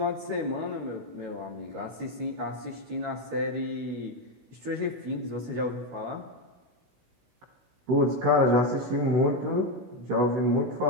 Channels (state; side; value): late; left; 16 ms